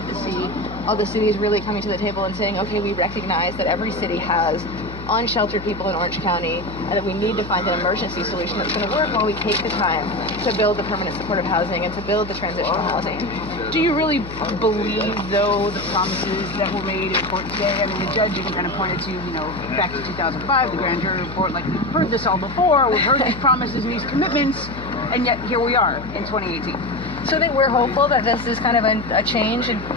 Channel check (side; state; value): left; noise; hum, 13 dB below the sound